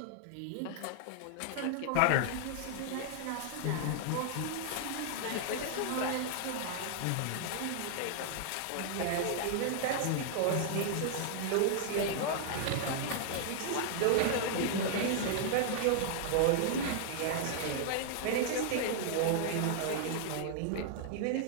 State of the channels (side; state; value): both; different; correlation 0.00